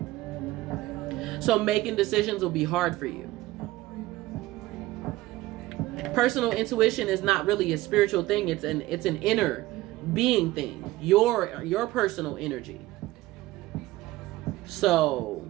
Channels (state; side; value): quieter; left; 17.7 dB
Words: So making decisions will be hard for you. Personal intuition is not really a spiritual thing. It's an inner being thing. Your personal energy.